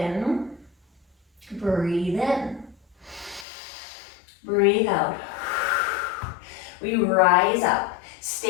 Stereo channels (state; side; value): drops out; right; at 3.5 s